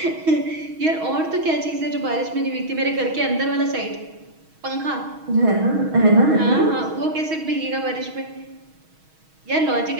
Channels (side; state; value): left; late; 6.3 ms